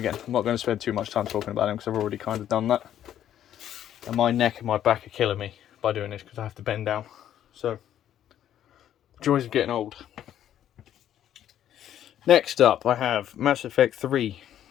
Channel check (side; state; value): right; quieter; 10.9 dB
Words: I'm not going to spend too much time talking about them because I've already kind of done that. And my neck and my back are killing me by doing this because I have to bend down. So, joys of getting old. Next up, I have Mass Effect 3.